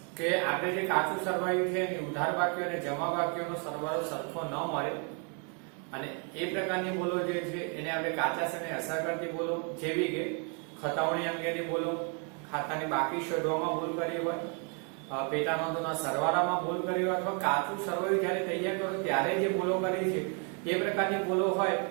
કે આપણે જે કાચું સરવાયું છે એની ઉધાર બાકીઓ અને જમા બાકીઓનો સરવાળો સરખો ન મળે, અને એ પ્રકારની ભૂલો જે છે એને આપણે કાચા સર્વેને અસર કરતી ભૂલો, જેવી કે ખતાવણી અંગેની ભૂલો, ખાતાની બાકી શોધવામાં ભૂલ કરી હોય, પેટા નોંધોના સરવાળામાં ભૂલ કરી હોય, અથવા કાચું સરવાયું જ્યારે તૈયાર કરો ત્યારે જે ભૂલો કરી છે એ પ્રકારની ભૂલો હોય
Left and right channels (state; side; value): quieter; left; 38.2 dB